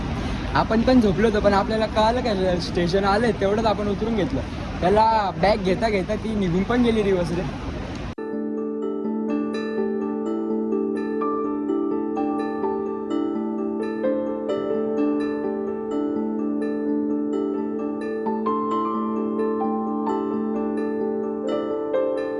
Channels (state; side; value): identical; both; correlation 1.00